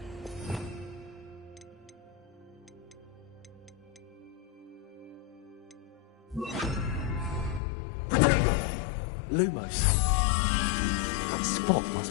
Lumos. That spot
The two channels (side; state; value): right; drops out; at 7.6 s